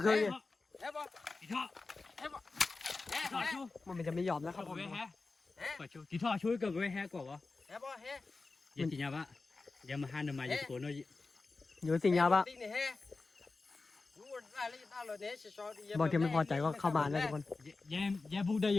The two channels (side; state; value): right; quieter; 3.8 dB